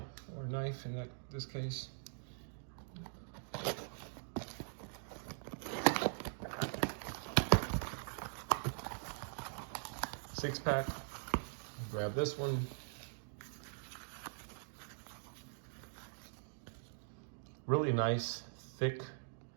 Or a knife in this case. Six pack. Grab this one. Really nice, thick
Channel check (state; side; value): silent; left; digital silence